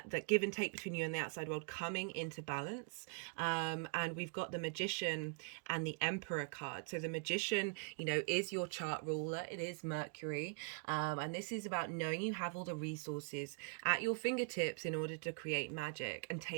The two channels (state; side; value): quieter; left; 39.9 dB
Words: give and take between you and the outside world coming into balance. And we've got the Magician and the Emperor card. So the Magician, is your chart ruler. It is Mercury. And this is about knowing you have all the resources at your fingertips in order to create magic and